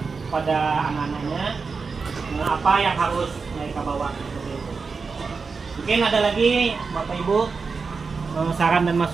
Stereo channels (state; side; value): quieter; left; 4.8 dB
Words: pada anak-anaknya apa yang harus mereka bawa. Seperti itu. Mungkin ada lagi Bapak Ibu saran dan